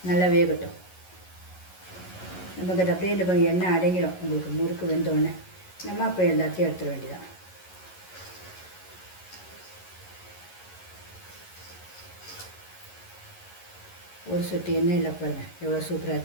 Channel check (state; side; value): late; right; 11 ms